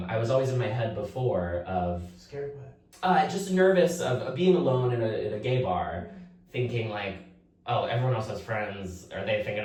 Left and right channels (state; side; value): identical; both; correlation 1.00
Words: was always in my head before of scared what? Just nervous of being alone in a gay bar, thinking like, oh, everyone else has friends. Are they thinking